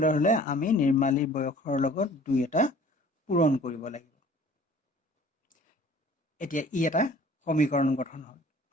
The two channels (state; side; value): normal; both; correlation 0.50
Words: হ'লে আমি নিৰ্মালীৰ বয়সৰ লগত দুই এটা পূৰণ কৰিব লাগিব এতিয়া ই এটা সমীকৰণ গঠন হ'ল